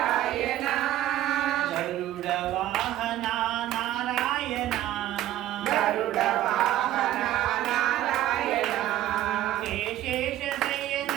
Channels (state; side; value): quieter; left; 13.6 dB